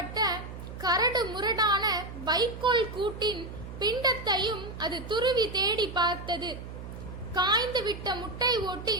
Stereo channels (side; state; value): right; noise; hum, 11 dB below the sound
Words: கரடு முரடான வைக்கோல் கூட்டின் பிண்டத்தையும் அது துருவி தேடி பார்த்தது. காய்ந்து விட்ட முட்டை